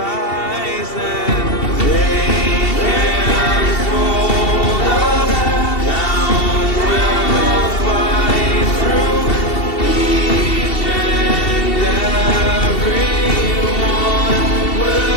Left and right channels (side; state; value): right; late; 2.7 ms